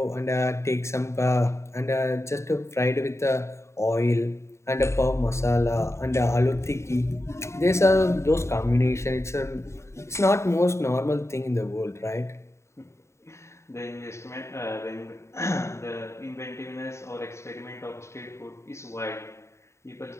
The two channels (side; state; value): right; late; 0.14 ms